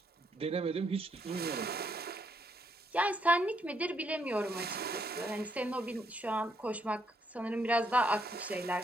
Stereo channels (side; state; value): both; normal; correlation 0.74